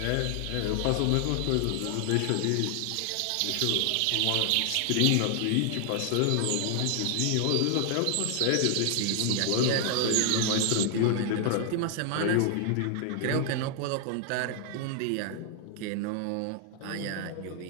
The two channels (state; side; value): different; both; correlation 0.00